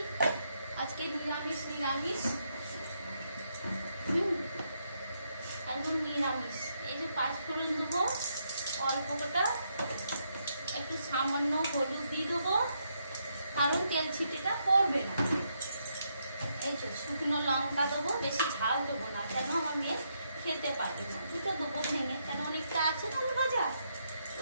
আজকে, নিরামিষ একদম নিরামিষ। এই যে 5 ফোড়ন দেবো, অল্প কটা একটু সামান্য হলুদ দিয়ে দেবো, কারণ তেল ছিটেটা পড়বে না। এই যে শুকনো লঙ্কা দেবো, বেশি ঝাল দেবো না, কেন আমার মেয়ে খেতে পারবে না। দুটো দেবো ভেঙে, কেন অনেকটা আছে আলু ভাজা,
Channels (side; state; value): both; inverted; correlation -0.78